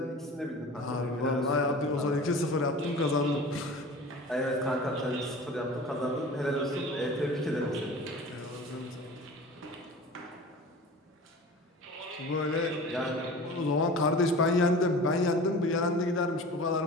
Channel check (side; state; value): both; normal; correlation 0.39